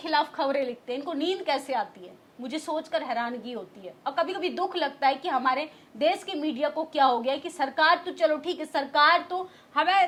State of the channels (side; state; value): both; identical; correlation 1.00